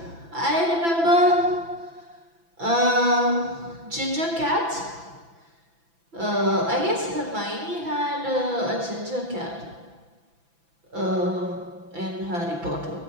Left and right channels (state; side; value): late; left; 6.0 ms